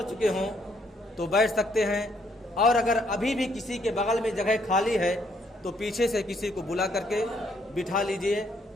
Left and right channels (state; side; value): normal; both; correlation 0.70